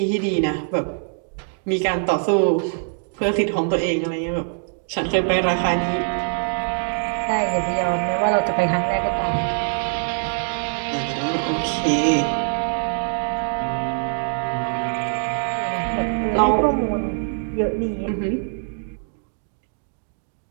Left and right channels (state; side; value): silent; left; digital silence